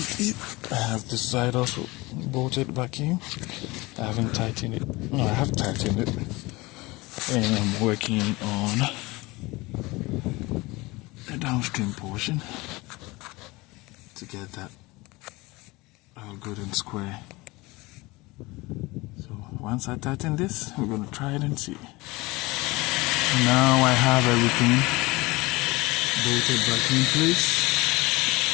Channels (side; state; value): right; quieter; 22.4 dB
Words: it. I have this side also bolted back in. I haven't tightened it. No, I have tightened it. And I'm working on the downstream portion to get that all good and square. So once I tighten this, we're going to try it and see. Now I have everything bolted back in place.